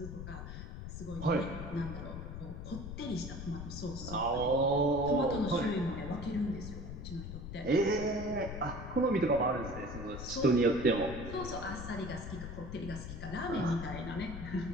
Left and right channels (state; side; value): noise; left; rumble, 8 dB below the sound